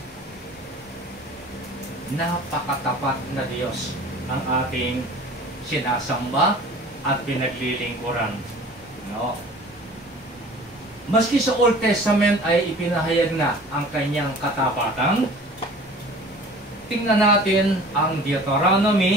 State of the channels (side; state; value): both; normal; correlation 0.45